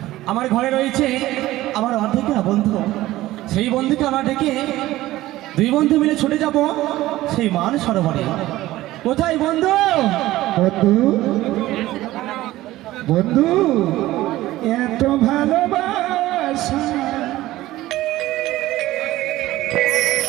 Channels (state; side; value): quieter; left; 16.3 dB